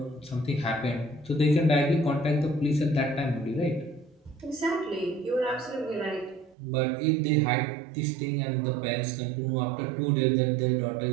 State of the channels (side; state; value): left; drops out; at 6.6 s